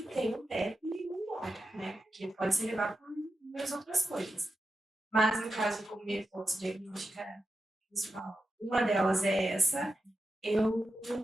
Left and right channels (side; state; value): both; normal; correlation 0.90